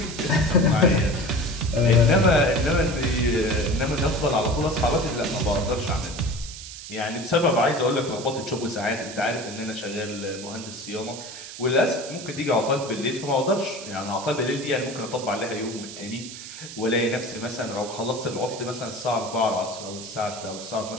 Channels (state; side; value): noise; right; hiss, 12 dB below the sound